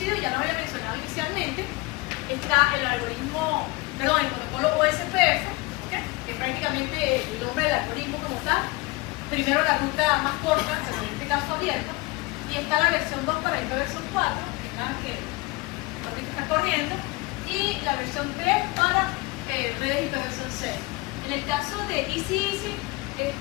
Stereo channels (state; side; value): quieter; right; 23.4 dB